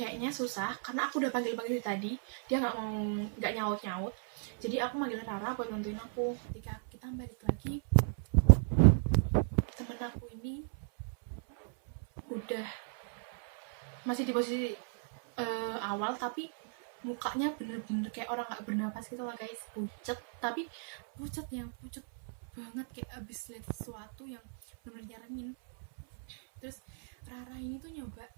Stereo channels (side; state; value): left; silent; 54 dB below the other